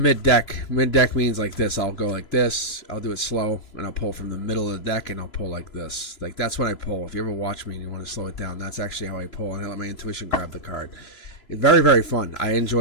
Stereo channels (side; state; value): right; late; 3.0 ms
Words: deck. Mid deck means like this. I'll go like this. I'll do it slow, and I'll pull from the middle of the deck, and I'll pull like this. Like that's when I pull. If you ever watch me and you want to slow it down, that's actually how I pull, and I let my intuition grab the card. It's very, very fun. I